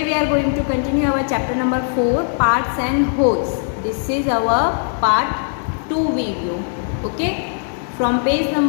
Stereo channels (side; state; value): right; silent; digital silence